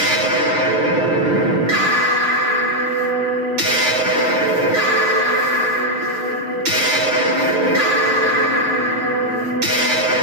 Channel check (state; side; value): late; left; 6.4 ms